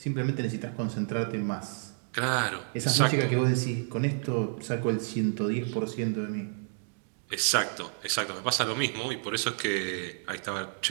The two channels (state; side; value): silent; left; 58 dB below the other